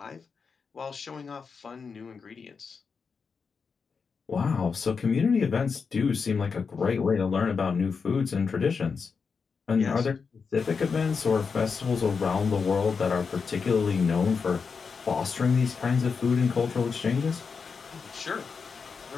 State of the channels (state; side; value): quieter; right; 5.4 dB